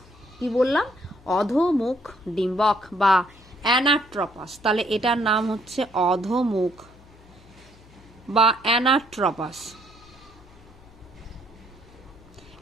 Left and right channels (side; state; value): left; noise; hum, 25 dB below the sound